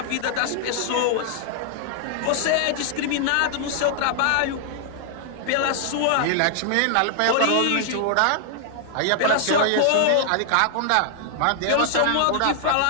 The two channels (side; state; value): both; different; correlation -0.01